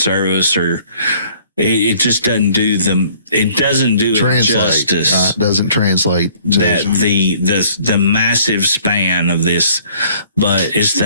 or it just doesn't do it justice. It doesn't translate to that the massive span of this, but it's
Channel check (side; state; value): both; inverted; correlation -0.58